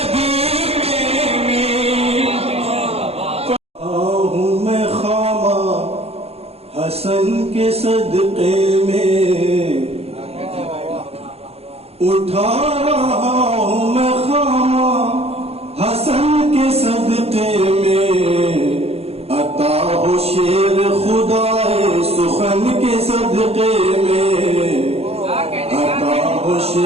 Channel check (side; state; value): left; late; 0.29 ms